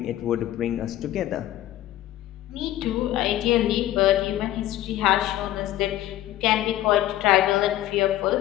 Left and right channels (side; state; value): right; quieter; 13.8 dB